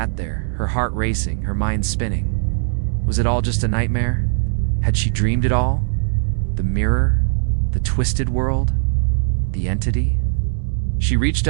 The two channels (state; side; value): silent; left; digital silence